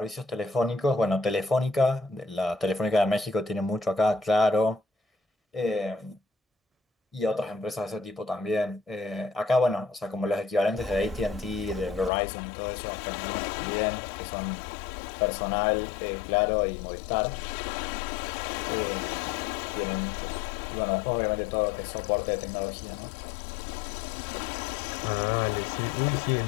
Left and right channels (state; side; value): drops out; right; at 12.1 s